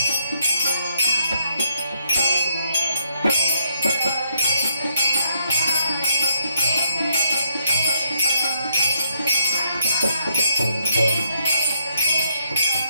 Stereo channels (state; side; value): inverted; both; correlation -0.73